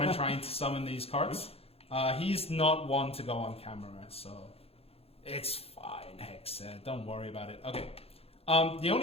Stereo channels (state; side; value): late; right; 0.29 ms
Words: trying to summon these carts. He's not one to go on camera, so it's fine, Hexa. Don't worry about it. Okay. The